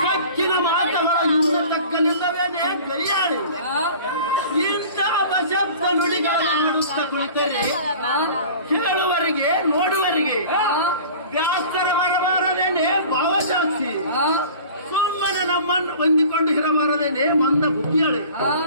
ಕಕ್ಕಿನ ಮಾತುಗಳ ಹಿಂದೆ ತಕ್ಕಲಿಲ್ಲವೇನೆ ಕೈಯಾಳಿ ಇಂಥ ಅಪಶಬ್ದ ನುಡಿಗಳಾಡುತ್ತ ಕುಳಿತರೆ ಕೇಳುವರಿಗೆ ನೋಡುವರಿಗೆ ವ್ಯಾಸರ ಬರಬಾರದೇನೆ ಭಾವಜಾಸ್ತಿ. ಸುಮ್ಮನೆ ನಮ್ಮನ್ನು ಹೊಂದಿಕೊಂಡು ಇರಬಾರದೇನೆ ಮಂದ ಬುದ್ಧಿಯಳೆ.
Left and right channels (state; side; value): inverted; both; correlation -0.43